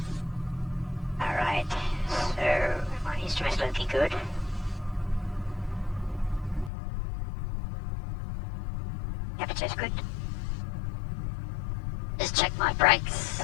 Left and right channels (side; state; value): right; drops out; at 6.7 s